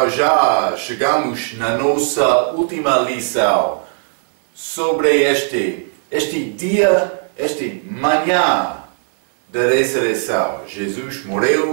já chegamos na nossa última lição sobre este dia, manhã da ressurreição. Jesus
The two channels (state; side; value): silent; left; digital silence